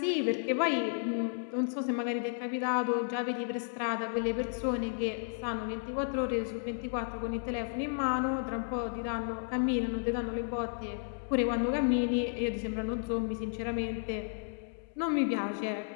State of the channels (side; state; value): right; silent; 56 dB below the other